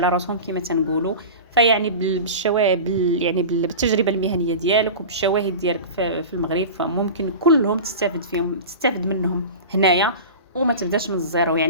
راسهم كما تنقولوا. فيعني بالشواهد يعني بالتجربه المهنيه ديالك وبالشواهد ديالك في المغرب، فممكن كلهم تستافد منهم هنايا وما تبداش من الزيرو.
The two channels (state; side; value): inverted; both; correlation -0.31